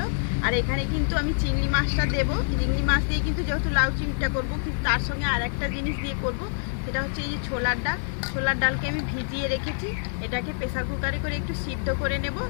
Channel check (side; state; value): right; silent; digital silence